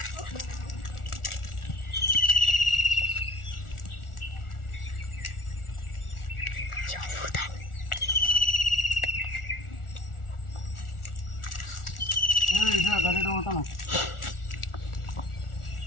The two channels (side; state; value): right; late; 1.4 ms